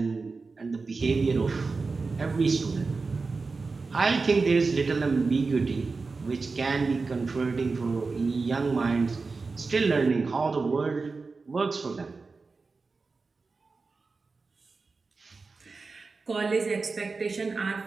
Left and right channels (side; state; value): left; quieter; 4.2 dB